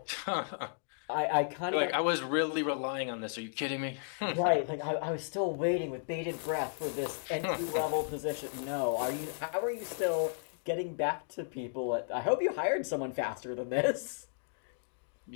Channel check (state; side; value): silent; right; digital silence